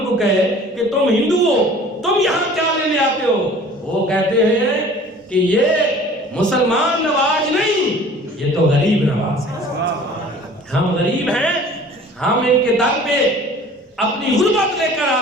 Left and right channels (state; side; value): normal; both; correlation 0.47